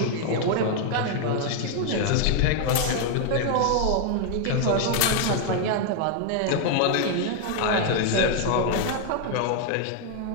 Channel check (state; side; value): different; both; correlation 0.00